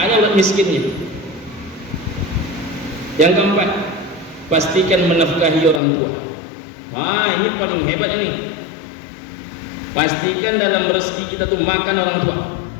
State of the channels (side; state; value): right; drops out; at 5.8 s